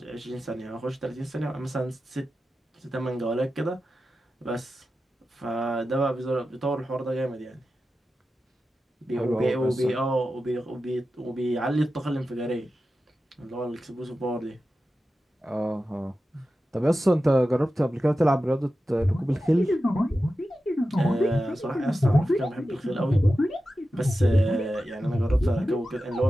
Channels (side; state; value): both; normal; correlation 0.92